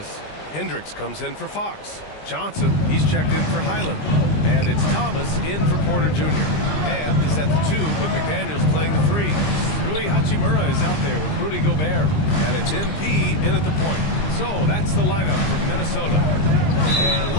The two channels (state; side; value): late; right; 20 ms